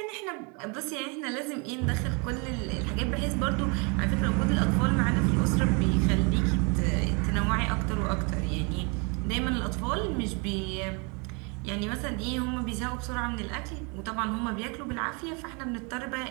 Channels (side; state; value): left; quieter; 32.5 dB